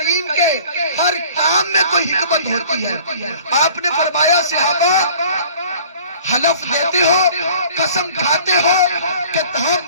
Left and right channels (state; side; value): inverted; both; correlation -0.50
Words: کے ہر کام میں کوئی حکمت ہوتی ہے۔ آپ نے فرمایا صحابہ حلف دیتے ہو، قسم کھاتے ہو کہ